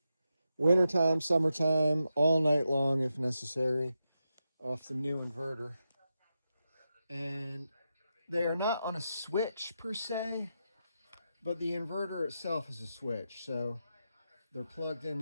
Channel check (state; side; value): inverted; both; correlation -0.87